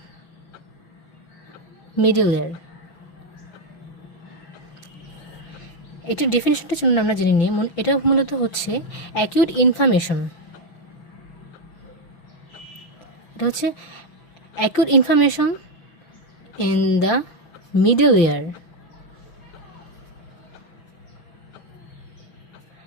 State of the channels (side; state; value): right; late; 5.9 ms